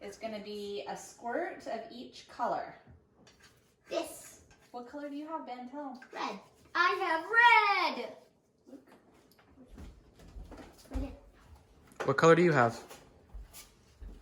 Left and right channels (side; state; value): both; identical; correlation 1.00